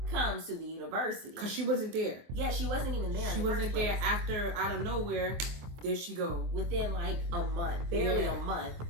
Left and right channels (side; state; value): left; late; 24 ms